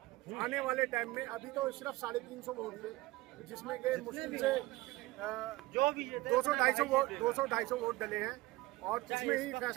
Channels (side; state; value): left; quieter; 19.9 dB